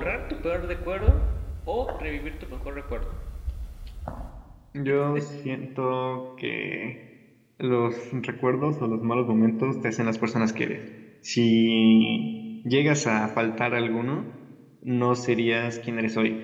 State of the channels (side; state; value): both; identical; correlation 1.00